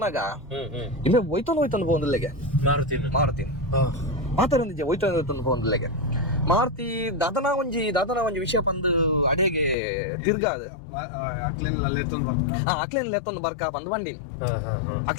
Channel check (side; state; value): right; drops out; at 9.8 s